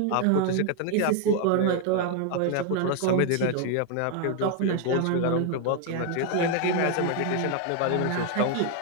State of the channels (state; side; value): different; both; correlation 0.01